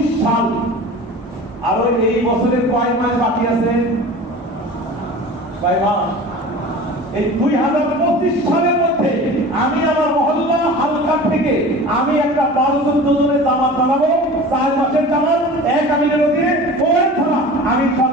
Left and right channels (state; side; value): normal; both; correlation 0.38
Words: সাল। আর এই বছরের কয় মাস বাকি আছে? 6 মাস। এই 2025 সালের মধ্যে আমি আমার মহল্লা হালকা থেকে আমি একটা 12-14 জনের জামাত বানাবো, 4 মাসের জামাত, এক আমিরের অধীনে ওই থানা আমি